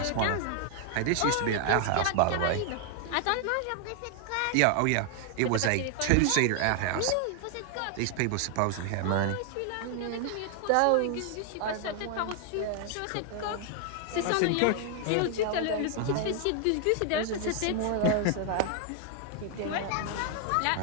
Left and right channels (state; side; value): different; both; correlation 0.00